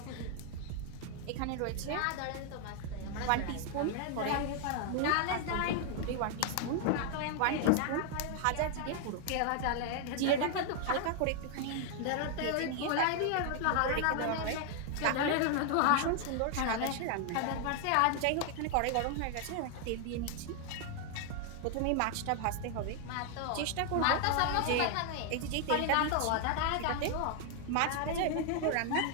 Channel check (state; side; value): different; both; correlation 0.00